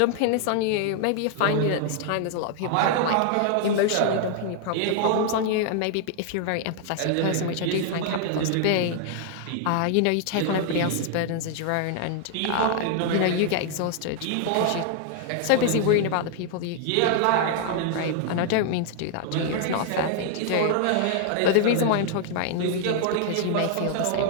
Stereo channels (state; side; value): different; both; correlation 0.00